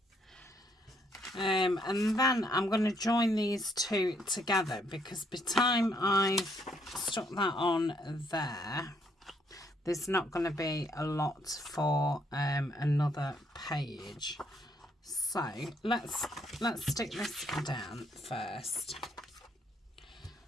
And then I'm going to join these two together, because by the time I've stuck that on there, there's not going to be a lot for another page. So let's stick this down first.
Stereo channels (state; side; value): normal; both; correlation 0.71